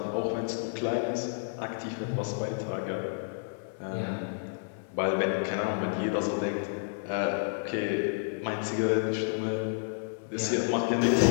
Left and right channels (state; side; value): silent; right; digital silence